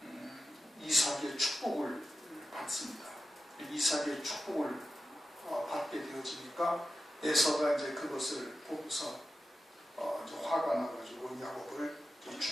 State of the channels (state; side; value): normal; both; correlation 0.92